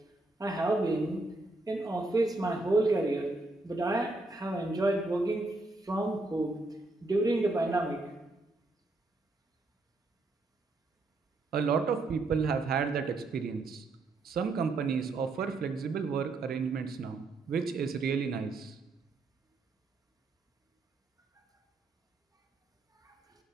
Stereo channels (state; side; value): quieter; left; 3.1 dB